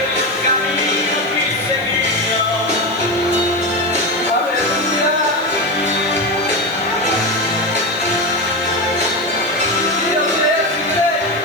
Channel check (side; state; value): right; noise; hiss, 22 dB below the sound